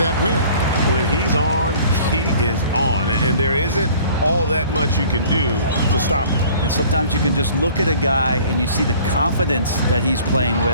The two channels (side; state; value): both; inverted; correlation -0.50